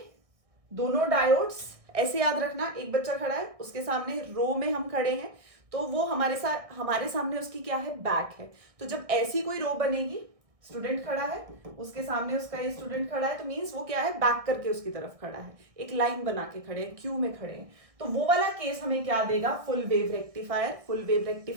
दोनों डायोड्स ऐसे याद रखना, एक बच्चा खड़ा है, उसके सामने रो में हम खड़े हैं, तो वो हमारे सामने उसकी क्या है, बैक है। तो जब ऐसी कोई रो बनेगी, स्टूडेंट खड़ा है, उसके सामने उसका ये स्टूडेंट खड़ा है, तो मींस वो क्या है, बैक करके उसकी तरफ खड़ा है, एक लाइन बना के खड़े हैं, क्यू में खड़े हैं। तो वो वाला केस हमें क्या देगा, full wave rectifier, full wave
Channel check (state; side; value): late; left; 1.6 ms